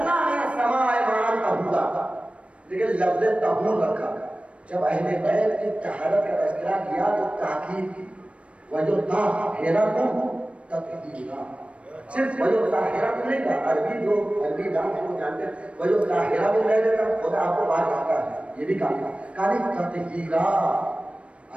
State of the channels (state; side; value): late; left; 0.062 ms